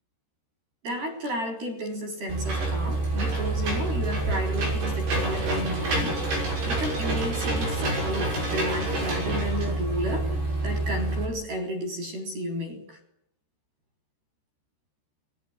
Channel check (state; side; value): late; left; 13 ms